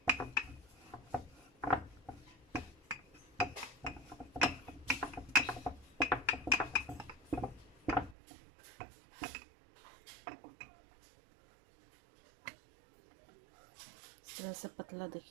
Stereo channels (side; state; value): left; drops out; at 8.2 s